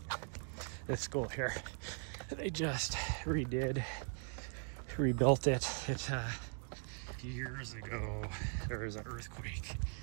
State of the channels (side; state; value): left; silent; 51 dB below the other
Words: This school here, they just rebuilt it. It years ago there was an earthquake